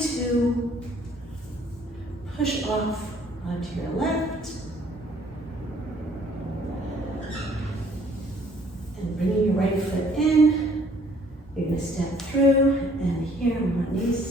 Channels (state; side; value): normal; both; correlation 0.60